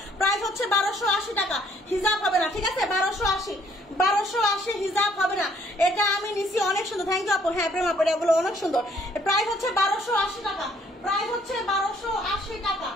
প্রাইস হচ্ছে 1280 টাকা। হিজাব হবে না, ঠিক আছে। 1280 হিজাব হবে না। এটা আমি নিছি, অনেক সুন্দর, থ্যাংক ইউ আপু। হ্যাঁ প্রেম আপু, এগুলো অনেক সুন্দর। প্রাইস হচ্ছে 1280 টাকা, প্রাইস হচ্ছে 1280 টাকা।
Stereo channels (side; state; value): both; normal; correlation 0.64